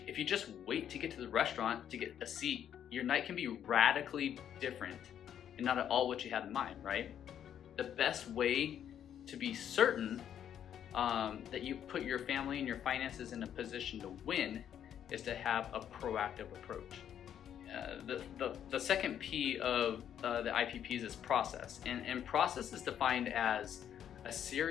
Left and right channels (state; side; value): quieter; right; 9.6 dB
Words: you just wait to get to the restaurant to get a seat, your night can be radically different and not at all what you had in mind, right? The best way to be certain that you put your family and your finances in a position to win is to have a proactive approach. The second P of the IPPs is process, and process is defined as a